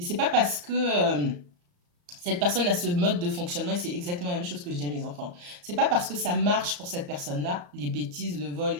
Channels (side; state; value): left; late; 34 ms